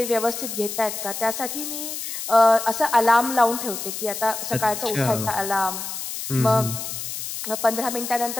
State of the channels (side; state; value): left; noise; hiss, 6 dB below the sound